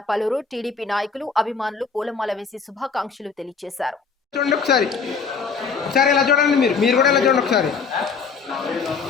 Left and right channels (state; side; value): quieter; right; 5.4 dB